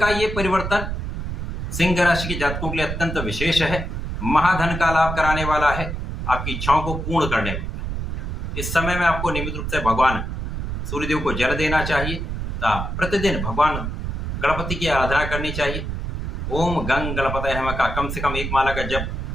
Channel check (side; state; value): right; noise; rumble, 4 dB below the sound